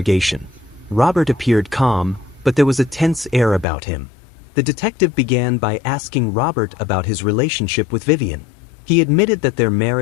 Robert appeared calm, but there was a tense air about him. The detective began by asking Robert about his relationship with Vivian. He admitted that their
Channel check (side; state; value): right; drops out; at 3.7 s